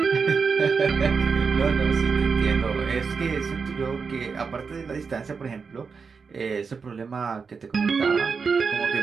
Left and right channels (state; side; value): quieter; left; 5.3 dB